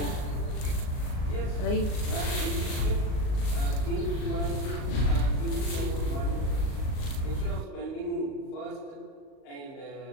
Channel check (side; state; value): right; late; 38 ms